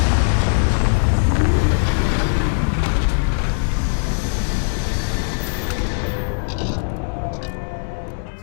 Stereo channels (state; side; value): silent; right; 66 dB below the other